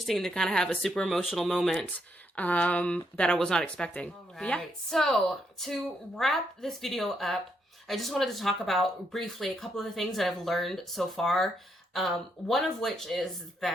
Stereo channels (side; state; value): both; normal; correlation 0.77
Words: to kind of have a super emotional moment that I was not expecting. All right. Yeah. So to wrap this video up, I just wanted to talk about briefly a couple of the things that I've learned so far. One of which is